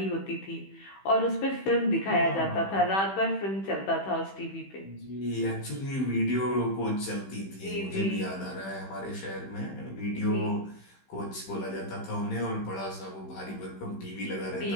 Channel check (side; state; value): right; late; 15 ms